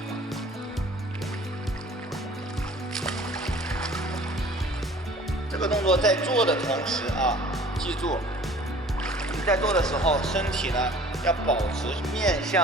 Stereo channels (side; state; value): both; normal; correlation 0.49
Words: 这个动作在做的同时啊，记住你在做的时候，身体呢要保持面